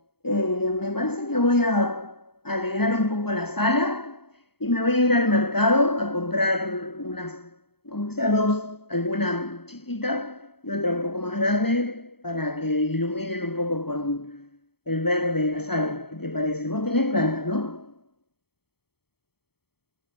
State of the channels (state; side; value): late; right; 0.96 ms